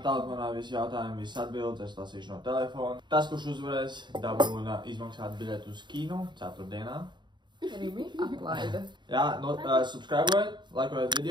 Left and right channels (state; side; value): late; left; 0.22 ms